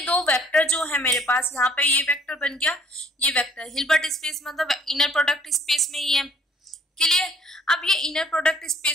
दो वेक्टर जो है मेरे पास, यहाँ पे ये वेक्टर बन गया, ये वेक्टर हिल्बर्ट स्पेस मतलब इनर प्रोडक्ट स्पेस में ही है। क्लियर? अब ये इनर प्रोडक्ट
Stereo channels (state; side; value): normal; both; correlation 0.60